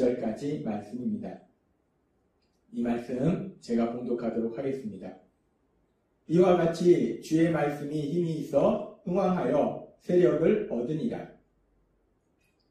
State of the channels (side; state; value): both; identical; correlation 1.00